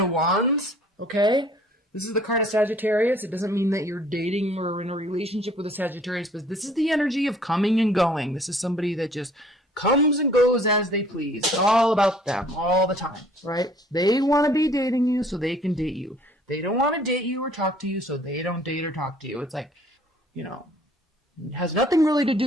Wands, okay? This is the card of Sagittarius. It doesn't mean that you're dating or in a relationship with a Sagittarius, but this is the energy of coming and going. This is somebody that just comes and goes as they please. It's all about them all the time, right? They want to be dating you so they can date you. They don't want to date you or talk to you so they don't date or talk to you. It's like, it has nothing really to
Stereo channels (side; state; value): both; normal; correlation 0.57